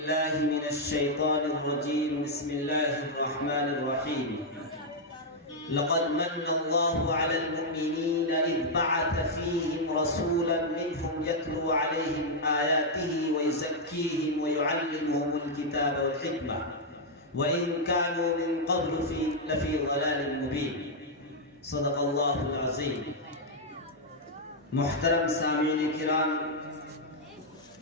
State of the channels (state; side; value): normal; both; correlation -0.03